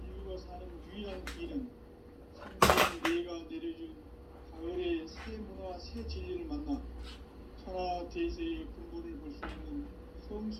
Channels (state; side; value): identical; both; correlation 1.00